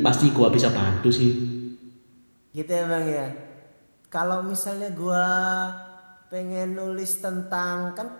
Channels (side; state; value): both; inverted; correlation -1.00